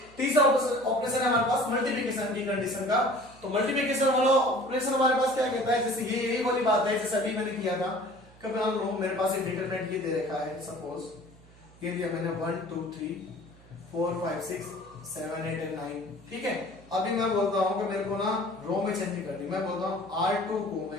तीसरा ऑपरेशन है हमारे पास मल्टीप्लिकेशन की कंडीशन का। तो मल्टीप्लिकेशन वाला ऑपरेशन हमारे पास क्या कहता है, जैसे ये यही वाली बात है जैसे अभी मैंने किया था। कभी मान लो मेरे पास एक डिटरमिनेंट ये दे रखा है, सपोज ये दिया मैंने 1 2 3 4 5 6 7 8 एंड 9। ठीक है, अभी मैं बोलता हूं कि मेरे को ना रो में चेंज करनी, मैं बोलता हूं R2 को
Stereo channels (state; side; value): noise; right; hum, 25 dB below the sound